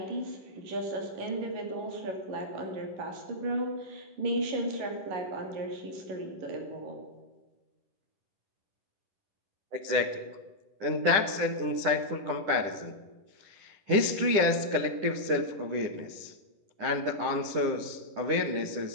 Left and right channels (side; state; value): left; late; 10 ms